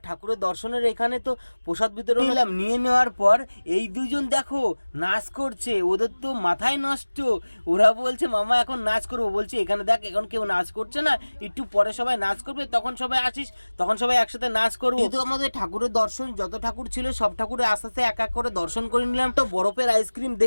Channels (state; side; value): inverted; both; correlation -1.00